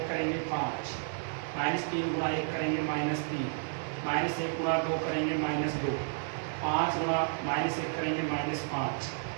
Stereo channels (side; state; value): left; silent; 57 dB below the other